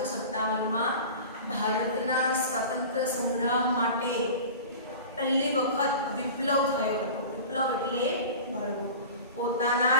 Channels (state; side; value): inverted; both; correlation -0.36